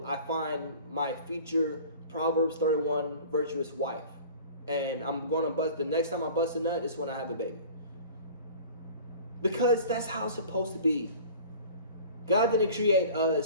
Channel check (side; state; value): both; inverted; correlation -0.43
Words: I find my future Proverbs 31 virtuous wife. And I'm going to bust, the next time I bust a nut is when I have a baby. Because that's how it's supposed to be. God didn't create